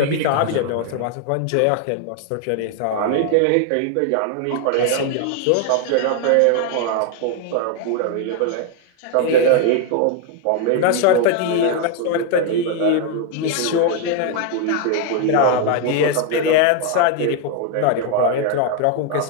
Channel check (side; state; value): both; different; correlation 0.00